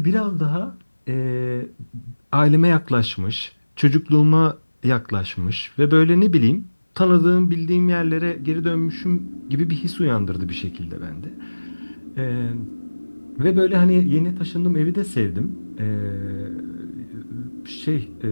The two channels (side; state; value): both; inverted; correlation -1.00